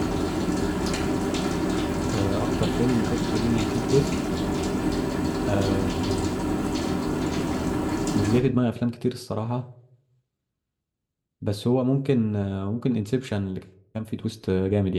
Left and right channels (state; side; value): identical; both; correlation 1.00